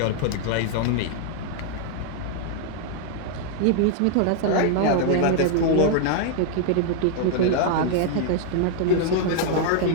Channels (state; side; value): different; both; correlation 0.00